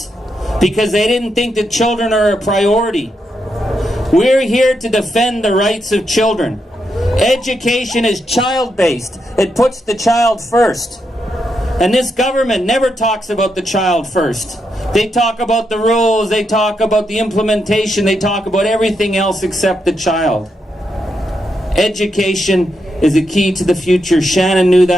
because they didn't think that children are a priority. We're here to defend the rights of children. Education is child-based. It puts the child first. And this government never talks about the child first. They talk about the rules, they talk about the implementation, they talk about everything else except the child. Education is the key to the future. Shannon knew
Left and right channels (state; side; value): normal; both; correlation 0.82